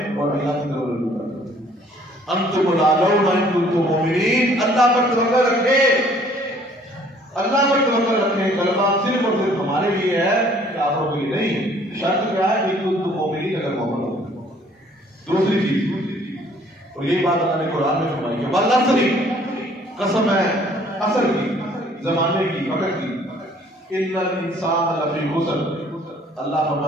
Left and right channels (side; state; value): both; normal; correlation 0.58